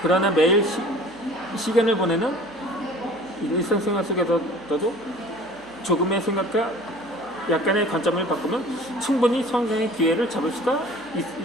그러나 매일 시간을 보내는 일상생활 속에서도 조금의 생각과 약간의 관점을 바꾸면 충분히 성장의 기회를 잡을 수가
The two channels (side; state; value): right; noise; hum, 29 dB below the sound